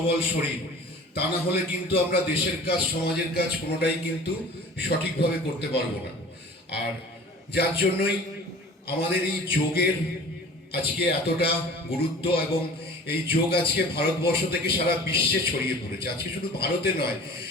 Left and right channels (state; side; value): normal; both; correlation 0.43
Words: শরীর। তা না হলে কিন্তু আমরা দেশের কাজ সমাজের কাজ কোনোটাই কিন্তু সঠিকভাবে করতে পারবো না। আর যার জন্যই আমাদের এই যোগের আজকে এতটা গুরুত্ব, এবং এই যোগ আজকে ভারতবর্ষ থেকে সারা বিশ্বে ছড়িয়ে পড়েছে। আজকে শুধু ভারতে নয়,